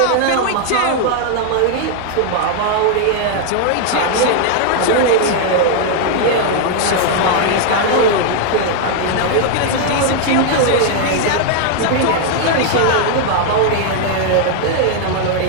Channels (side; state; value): both; different; correlation 0.00